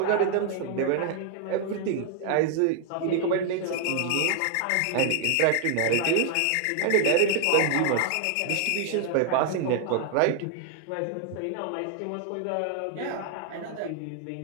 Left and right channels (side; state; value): both; different; correlation 0.00